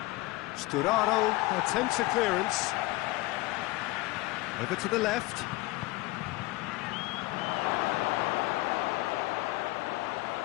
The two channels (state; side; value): quieter; right; 20.3 dB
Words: Sturaro attempts a clearance. Over to the left.